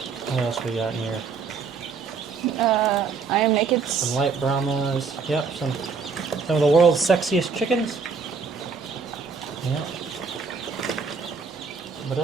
What else we got in here? I am naked. Some Light Brahmas. Yep, some of the world's sexiest chickens. Yep. But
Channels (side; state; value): left; quieter; 5.2 dB